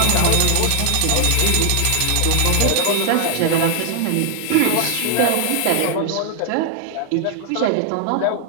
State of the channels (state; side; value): different; both; correlation 0.00